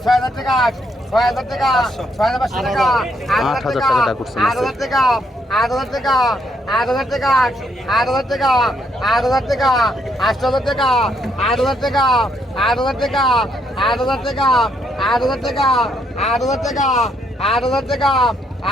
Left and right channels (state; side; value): normal; both; correlation 0.73